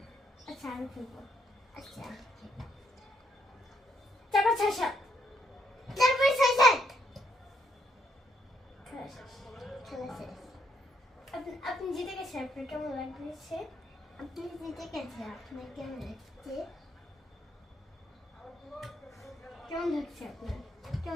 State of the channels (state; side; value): normal; both; correlation 0.73